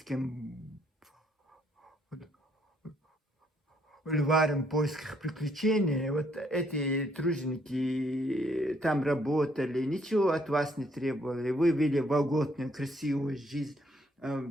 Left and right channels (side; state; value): both; normal; correlation 0.69